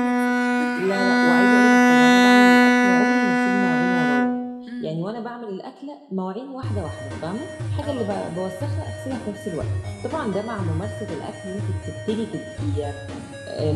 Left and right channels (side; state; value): both; identical; correlation 1.00